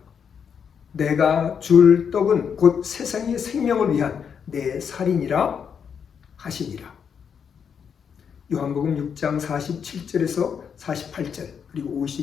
내가 줄 떡은 곧 세상의 생명을 위한 내 살이니라 하시니라. 요한복음 6장 47절에서 48절 그리고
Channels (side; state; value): right; quieter; 7.1 dB